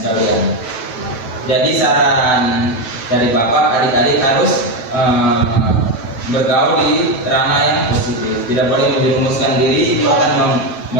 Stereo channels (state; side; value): late; right; 9.1 ms